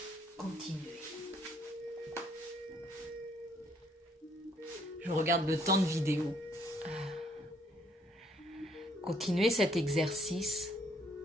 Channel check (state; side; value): normal; both; correlation 0.66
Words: Continuez. Je regarde le temps de vidéo. Continuez cet exercice.